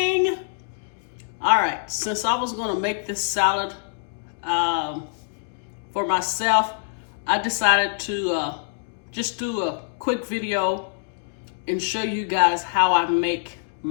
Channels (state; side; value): silent; right; digital silence